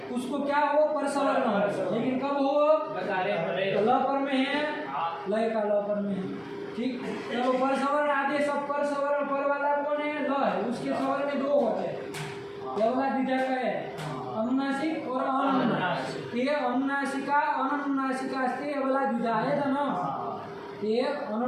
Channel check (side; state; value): both; identical; correlation 1.00